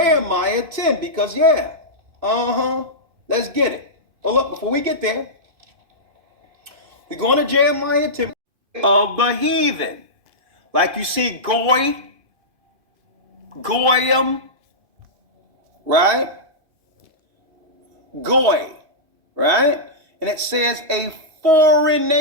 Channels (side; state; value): left; late; 2.5 ms